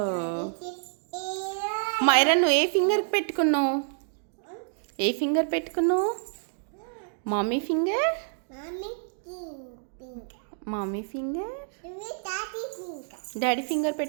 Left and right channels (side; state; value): left; silent; digital silence